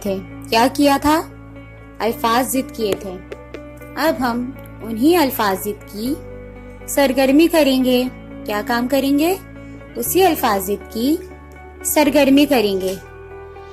क्या किया था? अल्फाज जिद किए थे। अब हम उन्हीं अल्फाज जिद की सरगर्मी करेंगे। क्या काम करेंगे? उसी अल्फाज जिद की सरगर्मी करेंगे।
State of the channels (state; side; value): identical; both; correlation 1.00